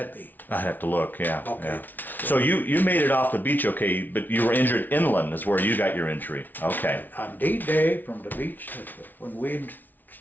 be? I'd have to look, yeah. Okay. Yeah. So you made it off the beach, okay, but you were injured inland is where you got your injury. Okay. On D-Day from the beach, when we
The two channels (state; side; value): late; right; 0.085 ms